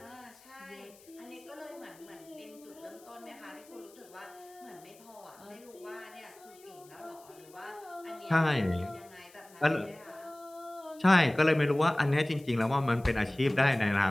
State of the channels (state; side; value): noise; left; hiss, 25 dB below the sound